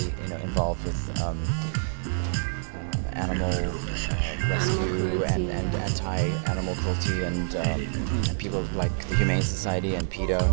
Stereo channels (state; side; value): silent; left; digital silence